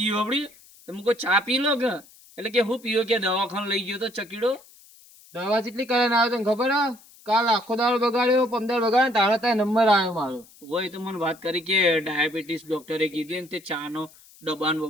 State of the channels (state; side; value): noise; left; hiss, 25 dB below the sound